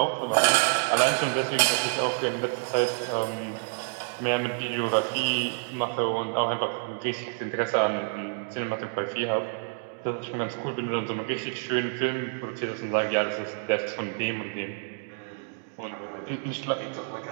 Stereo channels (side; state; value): left; silent; 59 dB below the other